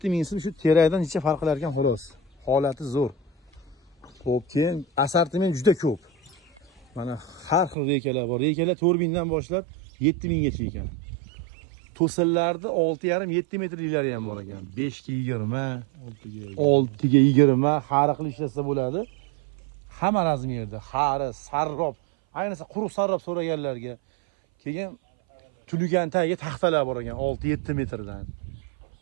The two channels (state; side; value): drops out; left; at 7.8 s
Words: so'm, shu terakdan necha farq qilar ekan xolos. Holati zo'r. Xo'p, keyin assortiment juda ko'p. Mana har xil rekalar bor. Rekalar 4000 dan boshlab 7000 gacha ekan. To'sinlarni 6,5-7 metrliklari ham bor ekan. 5 ga 20, 6 ga 20 har xil ishlasa bo'ladi. Hamma razmerda, xari, sarrob, ayniqsa quruq sarrob so'raganlarga. Keyin tuligan tagiga taxtalar bor ekan 6-7 metrdan.